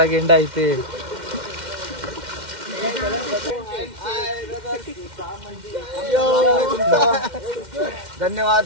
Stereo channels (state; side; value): late; left; 2.1 ms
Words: गेंडा इथे. धन्यवाद.